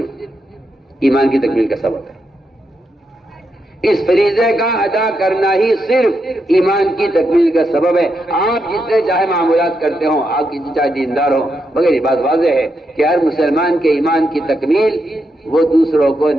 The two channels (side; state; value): both; normal; correlation 0.83